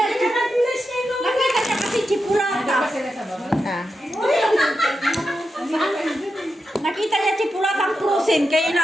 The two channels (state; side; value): normal; both; correlation 0.88